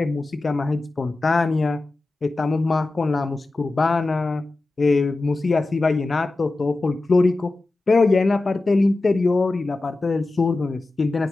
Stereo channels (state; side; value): quieter; right; 3.1 dB